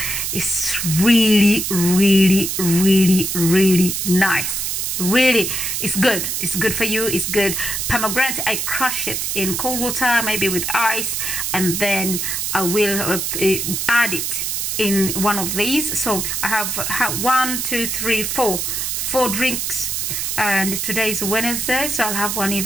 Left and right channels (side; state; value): right; noise; hiss, 1 dB below the sound